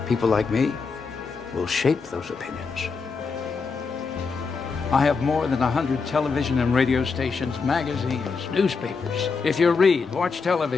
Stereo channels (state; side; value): quieter; right; 4.9 dB